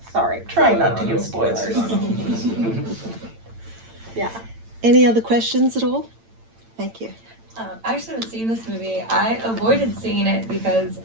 Sorry, trying not to give spoilers. Yeah. Any other questions at all? Thank you. I actually haven't seen this movie. I avoided seeing it because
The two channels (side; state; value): left; late; 8.9 ms